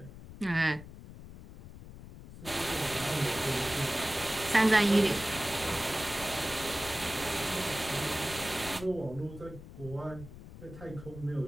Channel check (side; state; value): left; noise; rumble, 15 dB below the sound